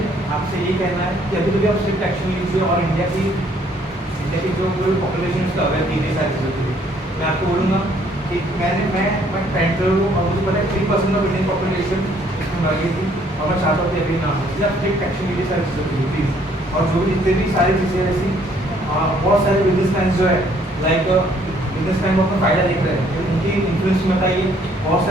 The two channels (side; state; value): both; normal; correlation 0.64